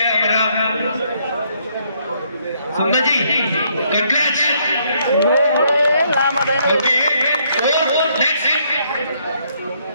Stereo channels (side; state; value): both; inverted; correlation -0.70